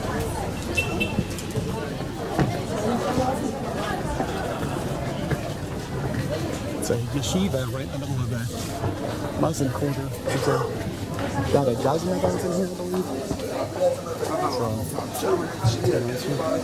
It's a yeshiva right in the middle of a Muslim quarter. There's about a dozen of those in here, I believe.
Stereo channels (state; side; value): identical; both; correlation 1.00